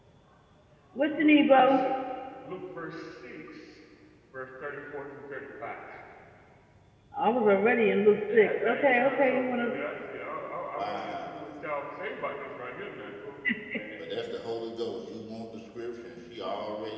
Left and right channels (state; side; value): identical; both; correlation 1.00